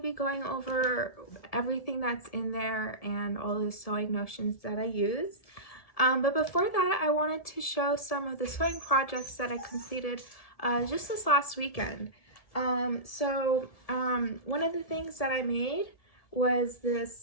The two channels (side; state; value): right; late; 1.7 ms